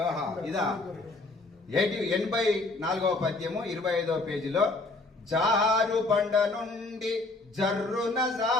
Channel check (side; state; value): right; quieter; 3.2 dB